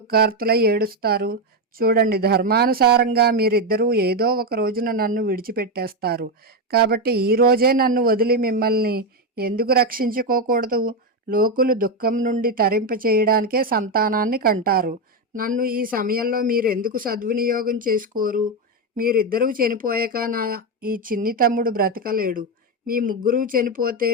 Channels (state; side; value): normal; both; correlation 0.08